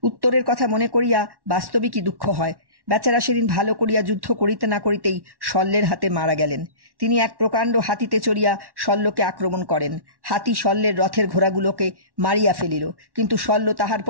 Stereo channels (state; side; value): late; left; 1.1 ms